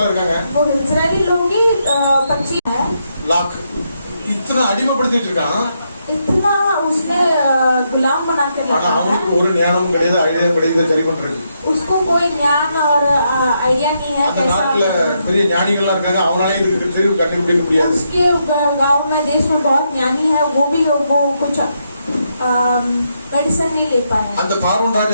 இருக்காங்க. वो इजरायली लोग ही 25 है, லாக் இத்தனை அடிமைப்படுத்திட்டு இருக்கான். इतना उसने गुलाम बना के ஆனா रखा है। அவனுக்கு ஒரு ஞானமும் கிடையாது, ஐடியாவும் கிடையாது, சரி பண்றது. उसको कोई ज्ञान और आइडिया नहीं है அந்த நாட்டுல कैसा। பெரிய ஞானிகள்லாம் இருக்காங்க, அவனால இதுக்கு தெரிவு கண்டுபிடிக்க முடியாது. उसके गांव में देश में बहुत ज्ञानी है, वो भी वो कुछ मेडिसिन नहीं ले पाए। அந்த பார்வோன்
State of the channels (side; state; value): both; inverted; correlation -0.79